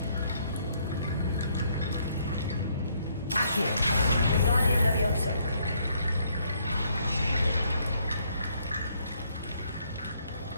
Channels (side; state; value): both; inverted; correlation -0.69